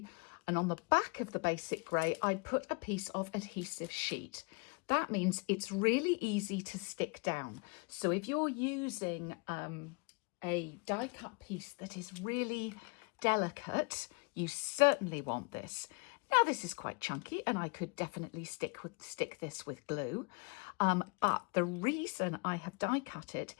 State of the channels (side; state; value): right; quieter; 31.9 dB